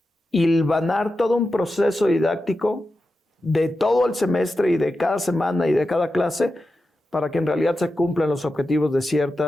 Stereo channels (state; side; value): normal; both; correlation 0.91